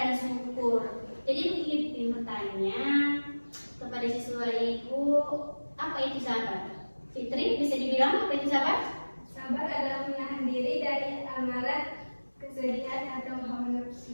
syukur. Jadi begini bertanya kepada siswa ibu, apa itu sabar? Fitri, bisa dibilang apa itu sabar? Sabar adalah menahan diri dari amarah, kesedihan atau hawa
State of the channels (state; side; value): inverted; both; correlation -1.00